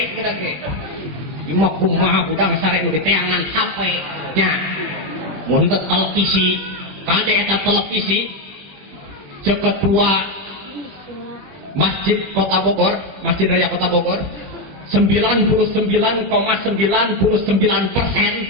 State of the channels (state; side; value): late; left; 21 ms